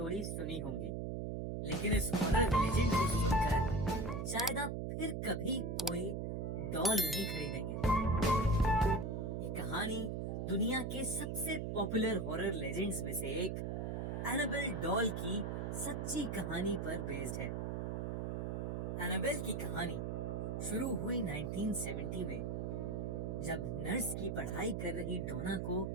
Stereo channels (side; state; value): right; noise; hum, 2 dB below the sound